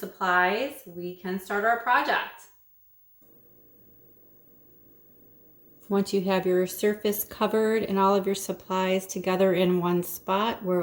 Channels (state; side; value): identical; both; correlation 1.00